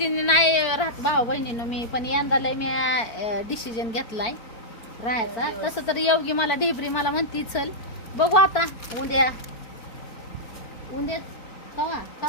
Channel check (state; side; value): late; right; 4.5 ms